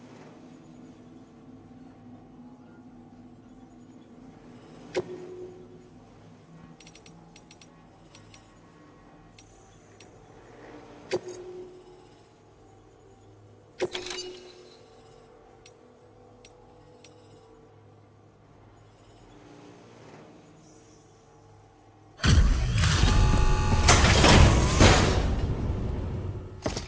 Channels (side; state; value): both; identical; correlation 1.00